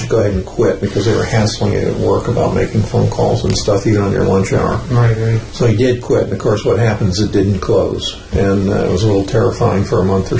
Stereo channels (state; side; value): identical; both; correlation 1.00